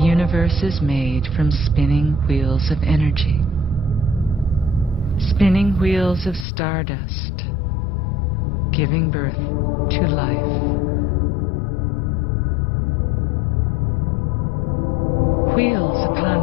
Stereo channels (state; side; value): drops out; right; at 6.5 s